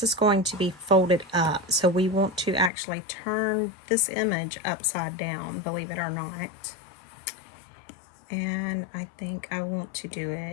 is going to be folded up, so we want to actually turn this image upside down, believe it or not. And I think I want to do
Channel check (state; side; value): drops out; right; at 2.7 s